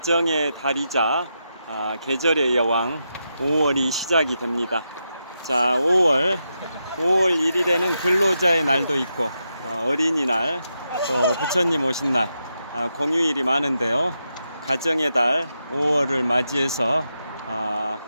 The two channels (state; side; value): inverted; both; correlation -0.86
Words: 달이자 계절의 여왕 5월이 시작이 됩니다. 자, 5월 1일에는 근로자의 날도 있고 어린이날, 또 부처님 오신 날, 공휴일이 많은데요. 가정의 달 5월을 맞이해서